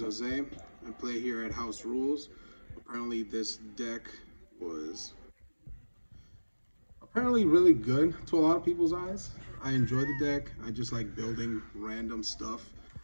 Jose. I play here at House Rules. Apparently, this deck was really good to a lot of people's eyes. I enjoy the deck. I just like building random stuff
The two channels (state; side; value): inverted; both; correlation -1.00